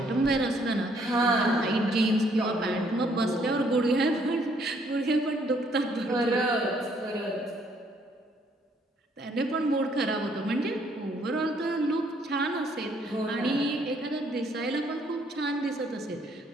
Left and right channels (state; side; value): normal; both; correlation 0.66